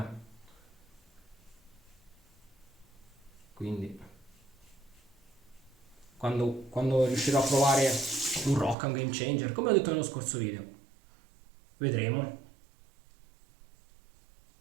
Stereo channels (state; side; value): drops out; left; at 8.8 s